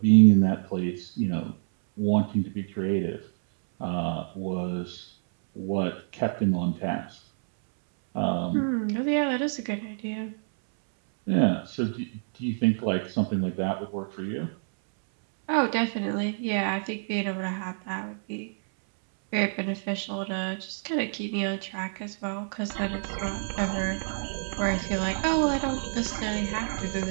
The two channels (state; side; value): silent; left; 60 dB below the other